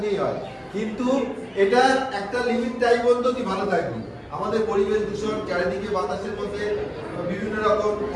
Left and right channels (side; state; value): both; identical; correlation 1.00